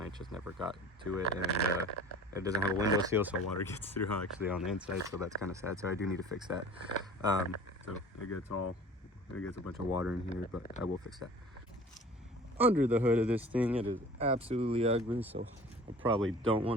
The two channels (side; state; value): both; normal; correlation 0.44